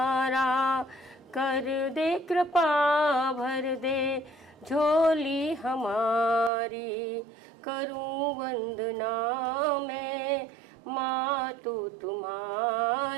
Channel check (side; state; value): left; drops out; at 6.5 s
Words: कर दे कृपा भर दे झोली हमारी। करूँ वंदना मैं माँ तू